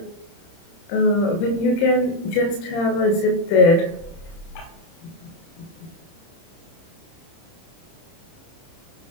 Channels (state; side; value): late; right; 30 ms